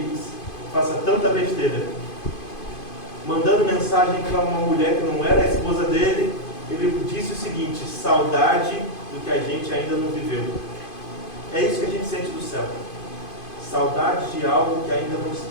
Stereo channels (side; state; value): right; late; 2.5 ms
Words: faça tanta besteira. Mandando mensagem para uma mulher que não era a esposa dele, ele disse o seguinte: saudade do que a gente ainda não viveu. É isso que a gente sente do céu. Saudade de algo que ainda não